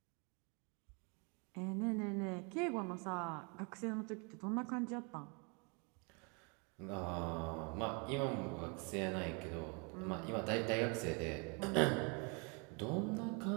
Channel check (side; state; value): left; quieter; 33.5 dB